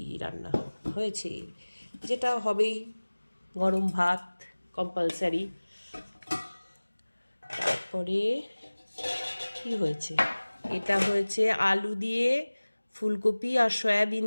রান্না হয়েছে, যেটা হবেই। গরম ভাত কম্পালসারি। তারপরে কি হয়েছে, এটা হয়েছে আলু দিয়ে ফুলকপি আর সয়াবিন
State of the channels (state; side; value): inverted; both; correlation -1.00